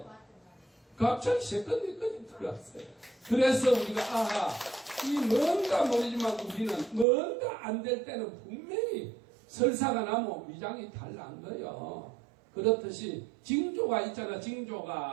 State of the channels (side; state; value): left; drops out; at 7.1 s